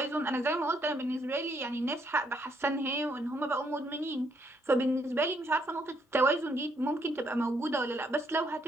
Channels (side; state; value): both; normal; correlation 0.72